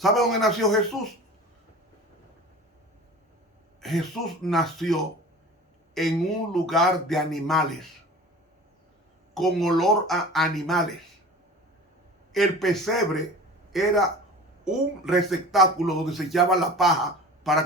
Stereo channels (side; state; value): both; normal; correlation 0.39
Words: dónde nació Jesús? Jesús nació en un lugar de animales, con olor a animales. El pesebre era un receptáculo donde se echaba la paja